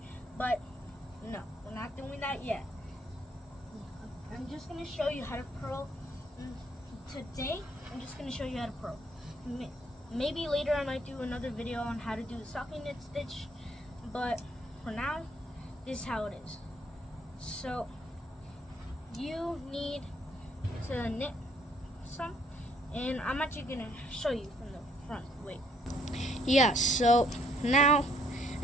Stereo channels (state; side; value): normal; both; correlation 0.66